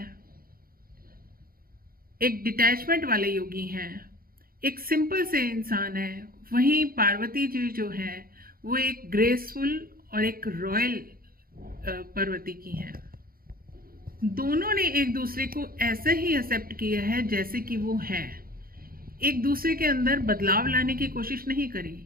एक डिटैचमेंट वाले योगी हैं, एक सिंपल से इंसान है, वहीं पार्वती जी जो है वो एक ग्रेसफुल और एक रॉयल पार्वती की हैं। दोनों ने एक दूसरे को ऐसे ही एक्सेप्ट किया है जैसे कि वो है। एक दूसरे के अंदर बदलाव लाने की कोशिश नहीं करी,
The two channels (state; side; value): late; left; 0.42 ms